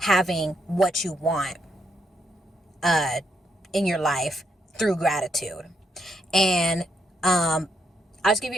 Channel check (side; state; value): both; normal; correlation 0.77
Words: what you want in your life through gratitude. And I'll just give